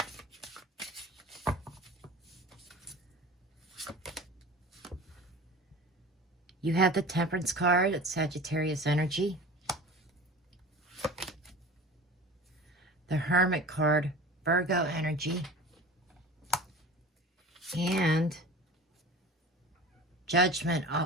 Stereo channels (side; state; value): both; normal; correlation 0.38